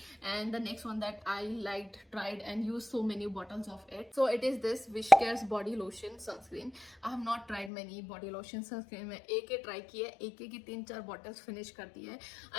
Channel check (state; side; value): drops out; right; at 7.7 s